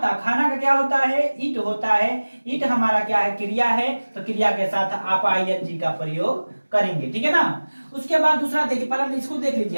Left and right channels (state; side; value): inverted; both; correlation -1.00